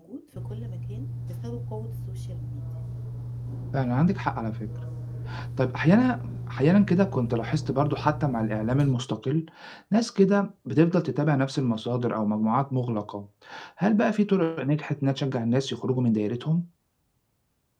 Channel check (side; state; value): both; identical; correlation 1.00